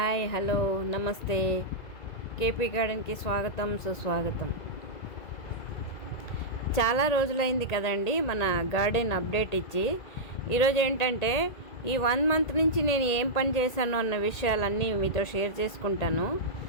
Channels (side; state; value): right; late; 2.0 ms